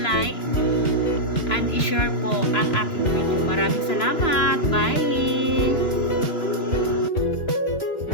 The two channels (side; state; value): right; late; 3.0 ms